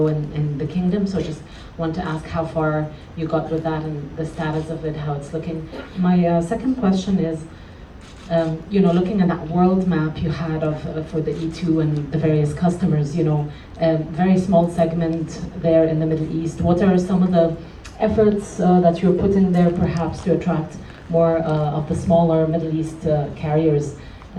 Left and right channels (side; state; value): both; identical; correlation 1.00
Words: in the kingdom. So just want to ask how far you got with that and the status of it, how it's looking. My second question is, looking at that world map you had for the E2 and the various customers, very small segment there in the Middle East. What are some of the efforts that you're putting there perhaps to attract more of the smaller Middle East carriers,